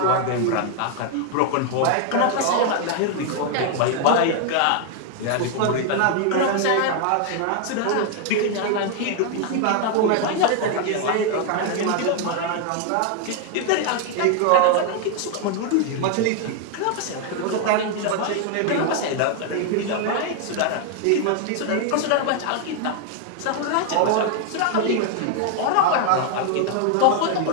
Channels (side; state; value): both; different; correlation 0.00